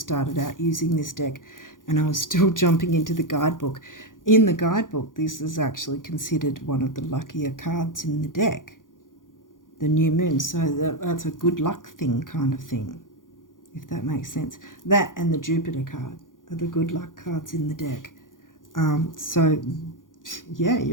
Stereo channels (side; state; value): right; late; 0.89 ms